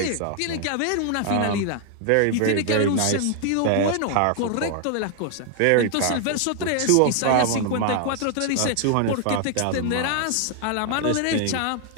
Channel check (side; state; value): both; different; correlation 0.00